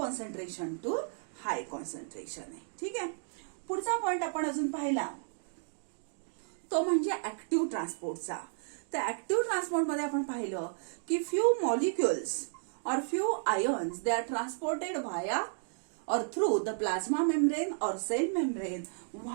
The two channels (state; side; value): silent; left; digital silence